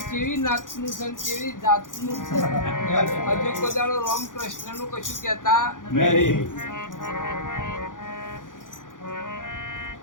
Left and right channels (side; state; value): right; late; 0.88 ms